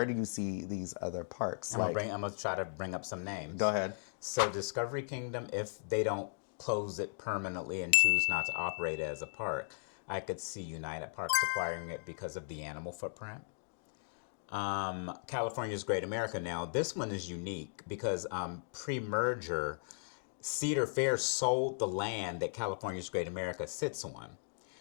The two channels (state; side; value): silent; right; digital silence